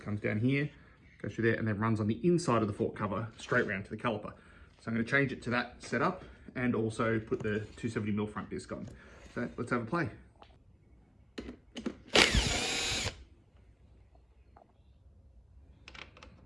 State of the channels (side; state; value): both; identical; correlation 1.00